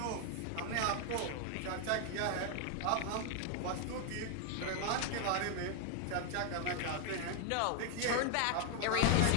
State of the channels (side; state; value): both; different; correlation 0.00